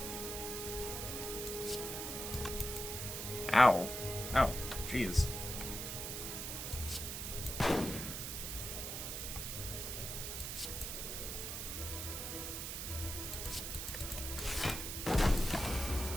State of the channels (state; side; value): noise; right; hiss, 4 dB below the sound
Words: Ow. Ow. Jeez.